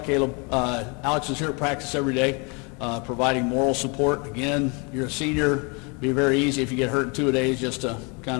Caleb, Alex is here at practice every day, providing moral support. Again, you're a senior. It'd be very easy if you get hurt in 2 days just to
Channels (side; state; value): right; quieter; 32.0 dB